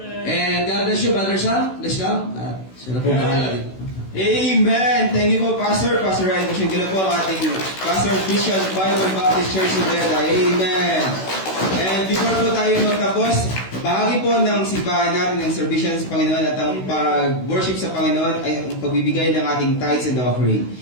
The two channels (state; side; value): late; right; 16 ms